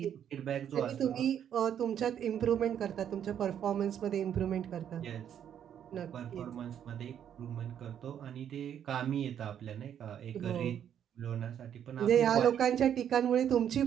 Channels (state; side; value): quieter; left; 9.4 dB